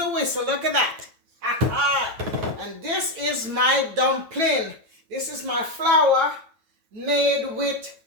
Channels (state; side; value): late; left; 9.0 ms